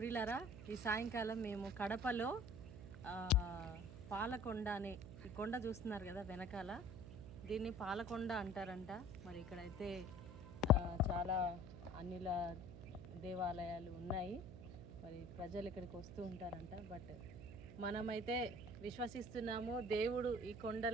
ఈ సాయంకాలం మేము కడపలో పాలకొండ అనే ఈ కొండ చూస్తున్నారు కదా వెనకాల, దీన్ని పాలకొండ అంటారంట. మరి ఇక్కడైతే చాలా అన్నిల దేవాలయాలు ఉన్నాయి. మరి ప్రజలు ఇక్కడికి వస్తూ ఉంటారంట. బట్ మనమైతే విశ్వసిస్తున్నాము, దేవుడు ఈ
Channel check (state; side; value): noise; right; hum, 12 dB below the sound